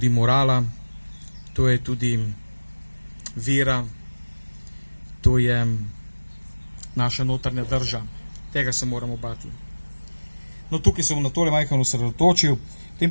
morala, to je tudi vera, to je naša notranja drža. Tega se moramo bati. No, tukaj sem na tole majhno osredotočil,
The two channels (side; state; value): both; inverted; correlation -1.00